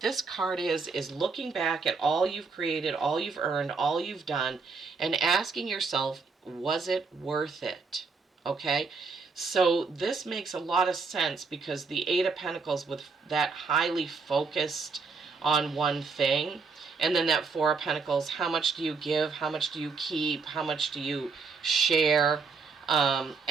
this card is looking back at all you've created, all you've earned, all you've done, and asking yourself, was it worth it? Okay? So this makes a lot of sense because the Eight of Pentacles with that highly focused on one thing, and then that Four of Pentacles, how much do you give? How much do you keep? How much do you share?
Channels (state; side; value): quieter; left; 4.7 dB